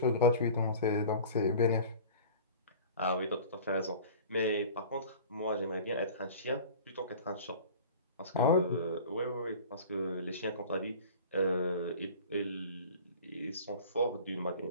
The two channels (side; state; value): both; inverted; correlation -0.41